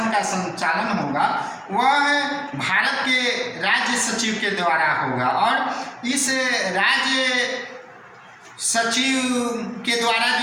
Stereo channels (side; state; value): both; identical; correlation 1.00